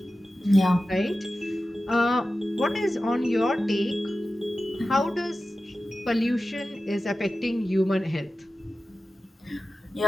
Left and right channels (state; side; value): normal; both; correlation 0.94